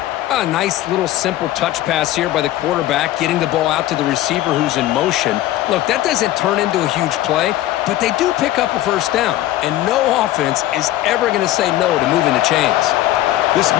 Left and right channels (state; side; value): quieter; right; 14.7 dB